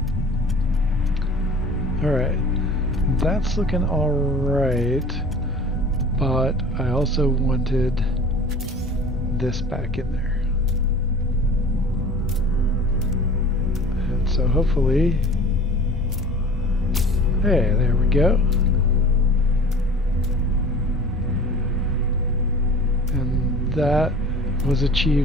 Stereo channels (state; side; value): normal; both; correlation 0.43